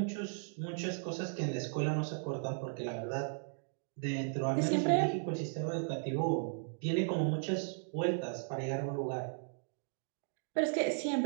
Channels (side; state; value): left; silent; digital silence